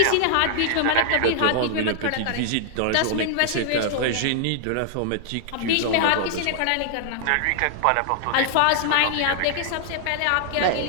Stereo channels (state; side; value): different; both; correlation -0.01